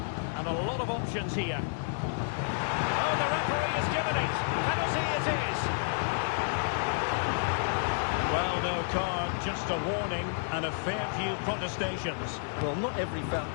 and a lot of options here. Oh, the referee has given it. Penalty it is. Well, no card, just a warning and a fair few protestations. Well, not every foul.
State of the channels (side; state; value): right; silent; digital silence